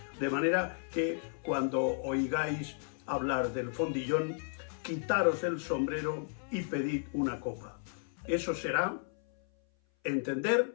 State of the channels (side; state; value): right; silent; 55 dB below the other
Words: De manera que cuando oigáis hablar del Fondillón, quitaros el sombrero y pedid una copa. Eso será